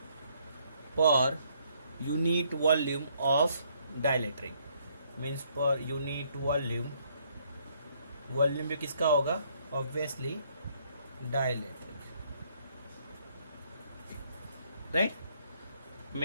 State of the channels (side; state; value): both; inverted; correlation -0.68